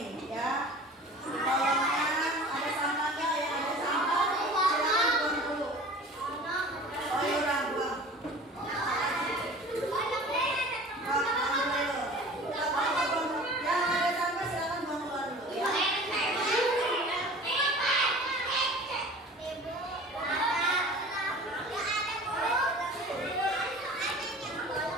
ya. Di kolongnya ada sampah nggak ya? Ada sampah. Silakan buang dulu. Oh iya, buang. Buang dulu. Yang ada sampah silakan buang keluar dulu ya.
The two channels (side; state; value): both; normal; correlation 0.42